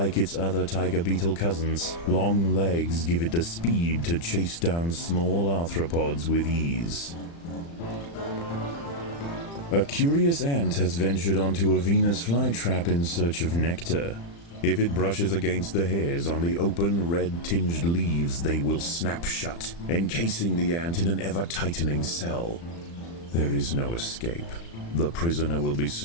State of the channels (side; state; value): right; late; 35 ms